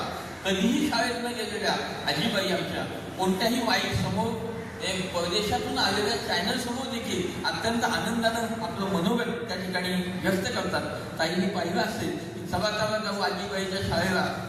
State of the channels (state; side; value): identical; both; correlation 1.00